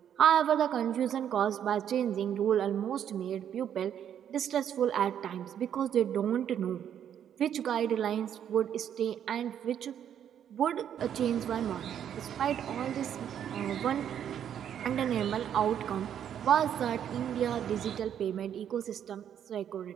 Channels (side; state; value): left; quieter; 9.4 dB